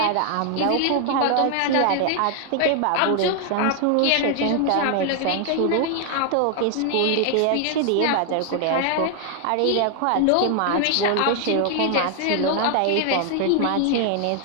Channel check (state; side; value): different; both; correlation 0.00